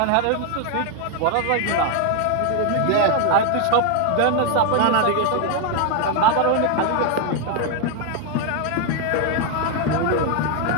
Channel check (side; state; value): both; different; correlation 0.01